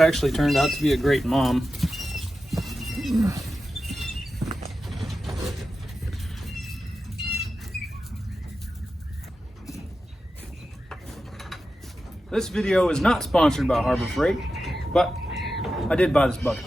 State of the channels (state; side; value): normal; both; correlation 0.91